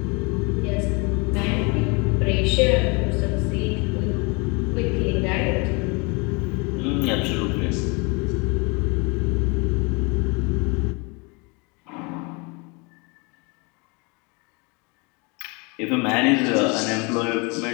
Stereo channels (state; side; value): quieter; right; 29.9 dB